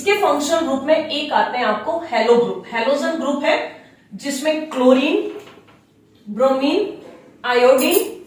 फंक्शनल ग्रुप में एक आते हैं आपको हेलो ग्रुप, हेलोजन ग्रुप है जिसमें chlorine, bromine, iodine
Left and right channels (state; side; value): identical; both; correlation 1.00